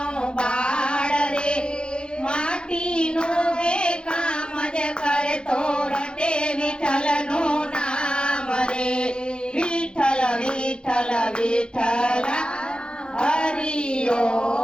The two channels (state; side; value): late; right; 0.050 ms